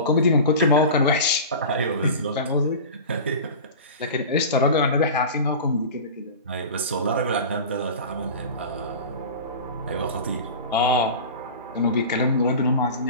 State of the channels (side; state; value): both; inverted; correlation -0.32